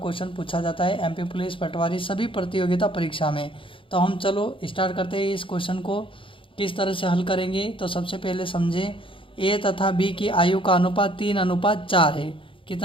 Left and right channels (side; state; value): right; late; 0.25 ms